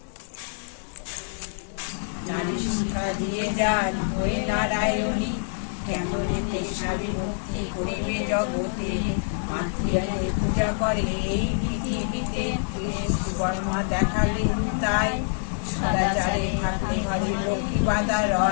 নারায়ণী কেমন ভক্তি করিবে জগতে, মাতৃয়াকে পূজা করে এই পৃথিবীতে। বর্মা দেখালে তাই সদাচারে থাকলে হরে লক্ষ্মী বাধা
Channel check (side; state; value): right; silent; 61 dB below the other